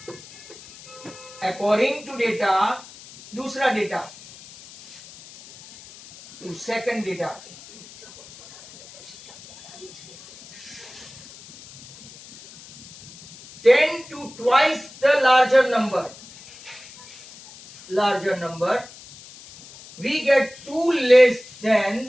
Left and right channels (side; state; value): left; noise; hiss, 19 dB below the sound